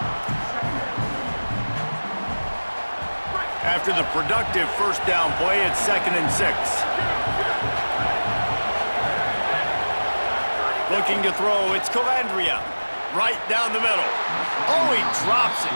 After the productive first down play, it's 2nd and 6. Looking to throw, it's Calandria. Right down the middle. Oh, he drops it.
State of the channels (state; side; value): inverted; both; correlation -1.00